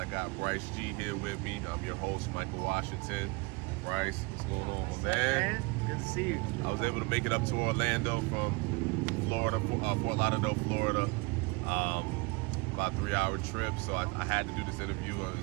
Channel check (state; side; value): quieter; left; 26.5 dB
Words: got Bryce G here with me. I'm your host, Michael Washington. Bryce, what's going on, my man? Good to see you. I was able to make it up to Orlando from Florida, Fort Lauderdale, Florida. About a 3-hour trip, so I had to do this interview.